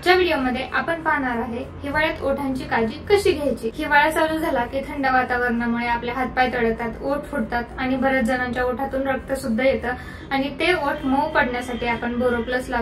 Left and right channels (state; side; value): identical; both; correlation 1.00